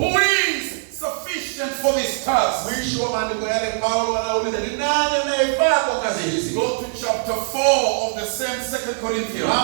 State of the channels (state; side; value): silent; left; digital silence